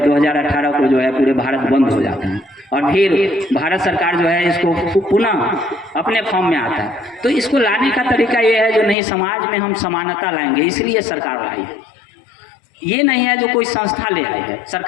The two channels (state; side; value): drops out; right; at 9.0 s